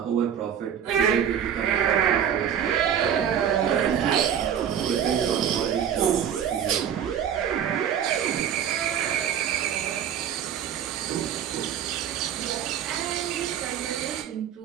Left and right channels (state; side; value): quieter; left; 8.9 dB